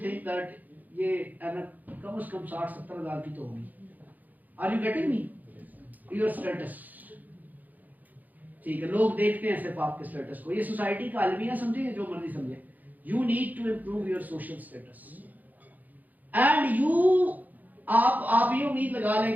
थिंक दैट ये कम से कम 60-70 हज़ार की तो होगी। Are you getting me? Your status, ठीक है, लोग देखते हैं सिर्फ आपके स्टेटस को। ये सोसाइटी का अलमिया समझे, जो मर्जी समझे, you need to improve your social status and you आप ये उम्मीद लगा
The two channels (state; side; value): late; left; 0.082 ms